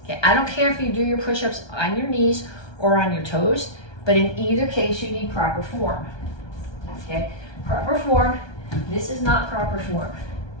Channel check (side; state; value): right; late; 1.2 ms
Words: Okay, I don't care if you do your push-ups on your knees or on your toes, but in either case, you need proper form. Okay, proper form. This is not proper form.